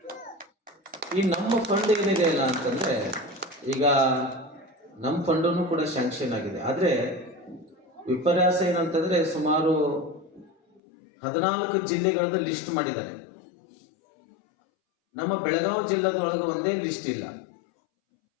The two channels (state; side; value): drops out; right; at 10.8 s